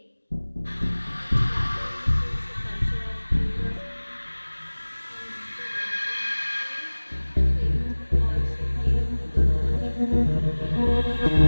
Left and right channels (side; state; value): both; inverted; correlation -1.00